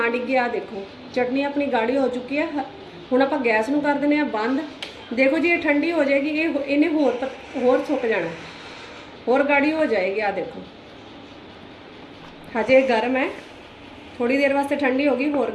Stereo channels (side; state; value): both; identical; correlation 1.00